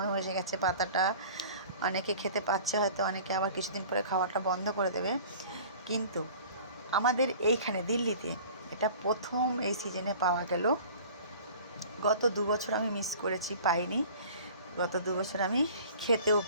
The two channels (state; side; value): inverted; both; correlation -0.44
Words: হয়ে গেছে। পাতাটা অনেকে খেতে পাচ্ছে, হয়তো অনেকে আবার কিছুদিন পরে খাওয়াটা বন্ধ করে দেবে। কিন্তু আমাদের এইখানে দিল্লিতে এটা প্রথম এই সিজনে পাওয়া গেল। গত 2 বছর আমি মিস করেছি, পাইনি। গত 2 বছর আমি খেতেও